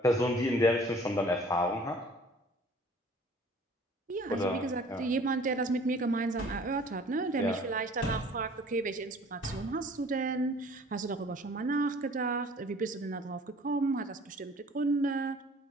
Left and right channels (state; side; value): normal; both; correlation 0.51